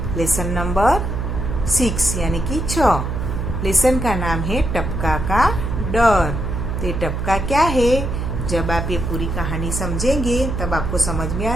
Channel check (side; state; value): right; noise; hum, 3 dB below the sound